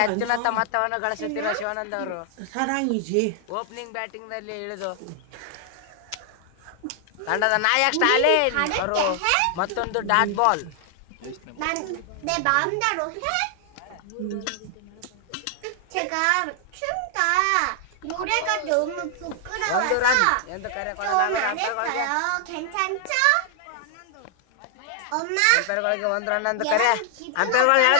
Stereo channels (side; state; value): both; different; correlation 0.00